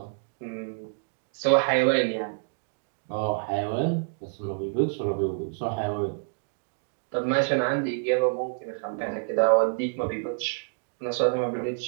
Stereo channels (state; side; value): silent; left; digital silence